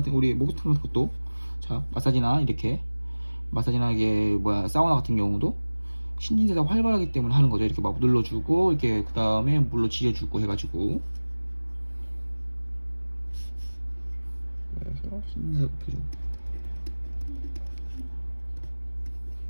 우리 목욕탕 같은 것도 자 마사지나 이렇게 마사지나 이게 뭐야 사우나 같은 경우도 신진대사가 활발하기 때문에 하는 거죠. 이렇게 막 눌러주고 이렇게 그 다음에 물로 지져주고 해가지고 그래서 신진대사 높여주고.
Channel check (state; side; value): inverted; both; correlation -1.00